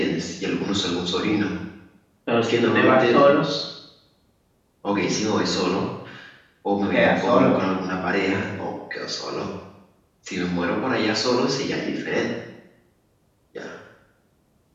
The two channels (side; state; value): both; identical; correlation 1.00